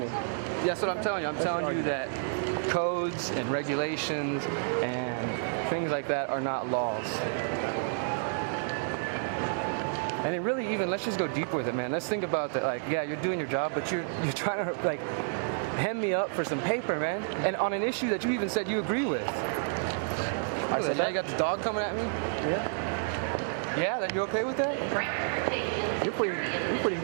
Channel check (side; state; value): left; silent; digital silence